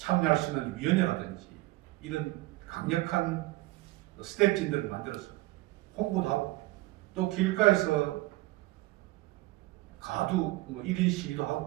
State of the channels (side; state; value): left; quieter; 19.5 dB